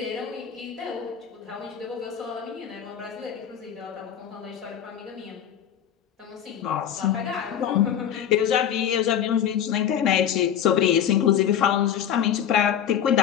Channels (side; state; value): right; quieter; 9.3 dB